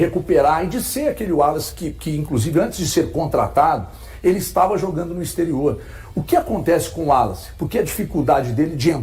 e de ser aquele Wallace que inclusive, antes de ser contratado, ele estava jogando no exterior. O que acontece com o Wallace? Por que a dificuldade dele de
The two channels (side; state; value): both; identical; correlation 1.00